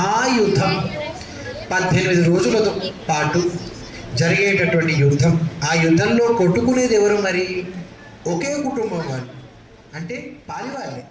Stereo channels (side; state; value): both; identical; correlation 1.00